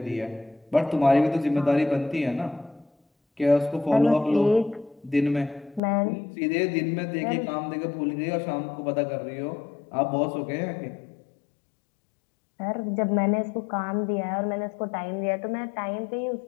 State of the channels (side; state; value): right; drops out; at 5.8 s